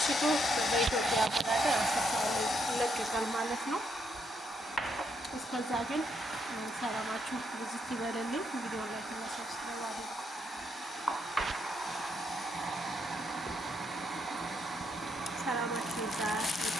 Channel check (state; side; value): normal; both; correlation 0.76